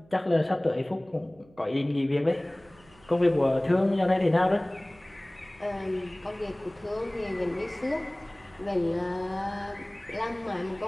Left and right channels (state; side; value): noise; right; hum, 27 dB below the sound